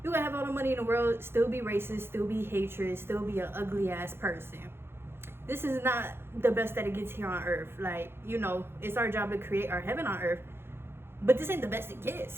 You gonna have all the money in the world, still be racist, still be hatred, still be an ugly ass person. This is not the best that it gets here on earth. Like, you know, it's our job to create our heaven on earth, but this ain't the best it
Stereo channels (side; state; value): left; late; 0.11 ms